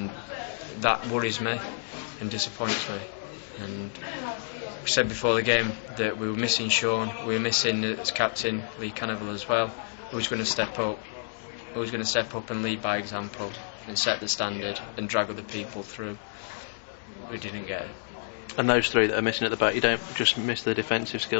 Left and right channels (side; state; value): right; silent; digital silence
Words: that worries me and disappoints me. And we said before the game that we were missing Sean, we were missing as captain Lee Cannavale as well. Who's going to step up? Who's going to step up and lead by example and set the standard and drag other people through? We didn't get it. And those three that are missing at the back, you don't just miss the defensive